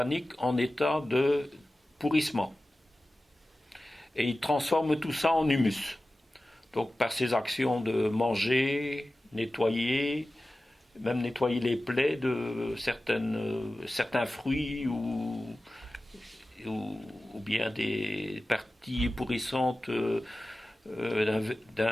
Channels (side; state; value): both; normal; correlation 0.95